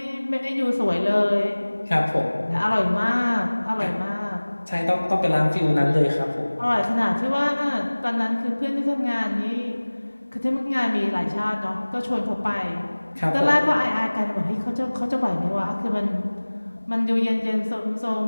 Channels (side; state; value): both; inverted; correlation -1.00